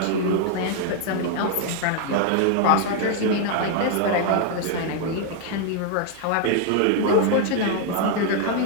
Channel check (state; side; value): different; both; correlation 0.00